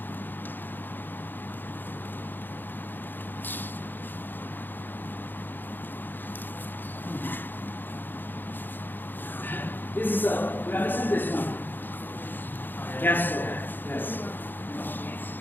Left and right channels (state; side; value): late; right; 0.092 ms